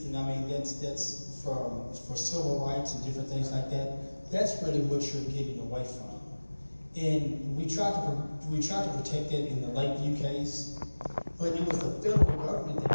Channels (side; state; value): both; inverted; correlation -1.00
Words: and I mean that's for civil rights and different things like that, that's really what you're getting away from. And we tried to protect that in the Lakeview case, but it was the federal government